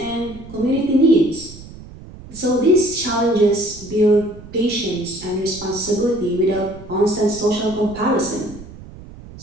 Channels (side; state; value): right; noise; rumble, 17 dB below the sound